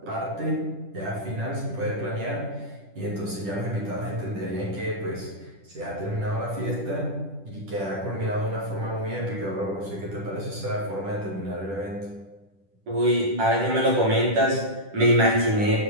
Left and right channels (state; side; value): late; left; 10 ms